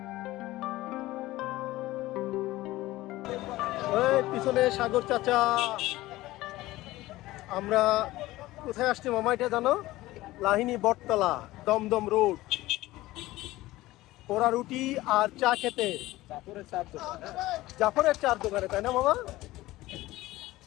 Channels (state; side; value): quieter; right; 17.6 dB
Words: পিছনে সাগর চাচা। আমরা কোথায় আসছি মামা এটা জানো? লাহিনী বটতলা, দমদম রোড, পোড়া রুটি আর চা খেতে। জাফরের চার দোকানে, তাই না মামা?